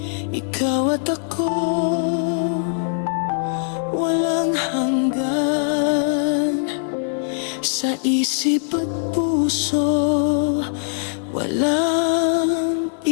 ikaw at ako, walang hanggan. Sa isip at puso, walang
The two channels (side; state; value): right; silent; digital silence